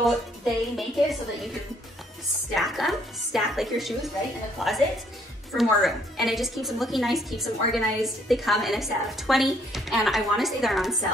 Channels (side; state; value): both; normal; correlation 0.66